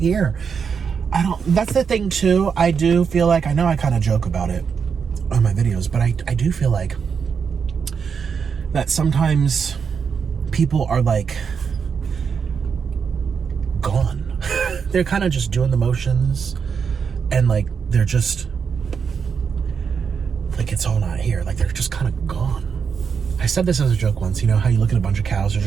That's the thing too. I do feel like, I know I kind of joke about it on my videos, but I do feel like that sometimes people are like gone. They're kind of just doing the motions, and like they're just like, it's all not here. Like, they're just kind of gone. I said this as a joke once, how you look at a bunch of cows, they're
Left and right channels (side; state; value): left; quieter; 6.3 dB